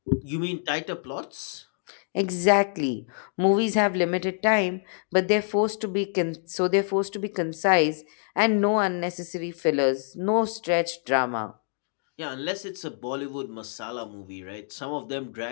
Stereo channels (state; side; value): silent; right; digital silence